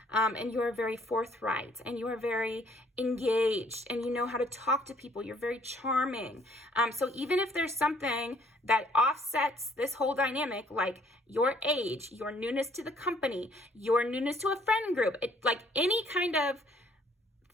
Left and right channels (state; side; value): normal; both; correlation 0.62